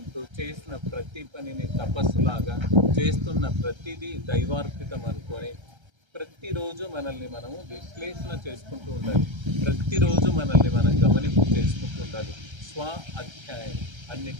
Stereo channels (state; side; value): late; left; 1.3 ms